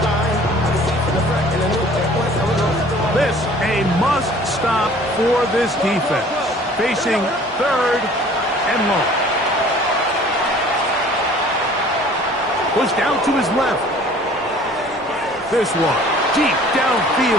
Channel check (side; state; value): both; normal; correlation 0.50